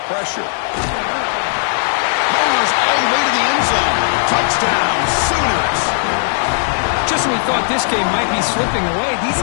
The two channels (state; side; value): silent; right; 69 dB below the other